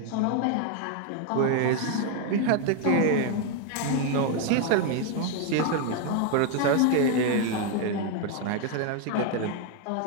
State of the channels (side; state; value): both; different; correlation 0.01